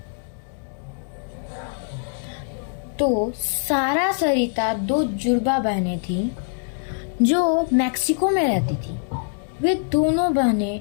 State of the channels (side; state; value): right; silent; digital silence